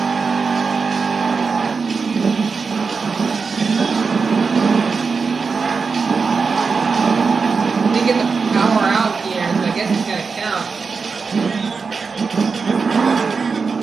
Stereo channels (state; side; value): quieter; left; 5.0 dB